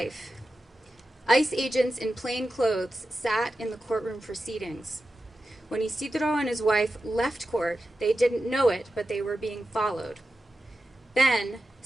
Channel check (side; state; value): both; normal; correlation 0.92